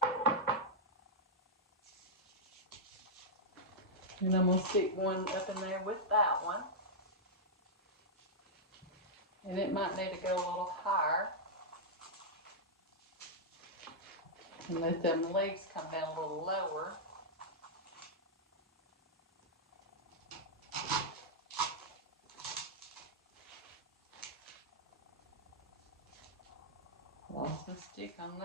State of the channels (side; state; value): both; normal; correlation -0.06